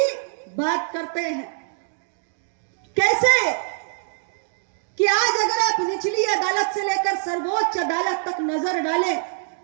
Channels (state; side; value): silent; left; digital silence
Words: बात करते हैं। कैसे कि आज अगर आप निचली अदालत से लेकर सर्वोच्च अदालत तक नजर डालें,